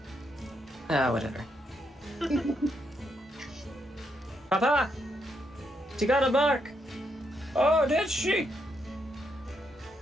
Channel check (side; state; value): both; normal; correlation 0.78